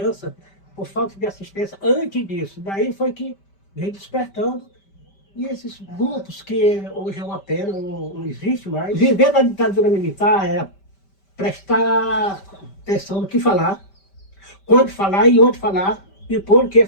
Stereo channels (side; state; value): right; late; 5.1 ms